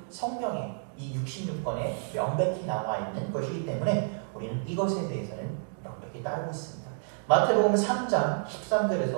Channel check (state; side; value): silent; left; digital silence